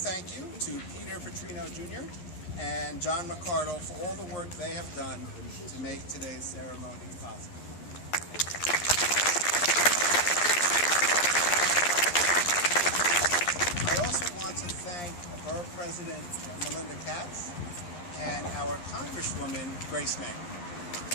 you to Peter Petrino Jr. and John McCardle for all the work they have done to make today's ceremony possible. I also want to thank Borough President Melinda Katz and our Congresswoman Grace May.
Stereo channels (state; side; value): late; right; 11 ms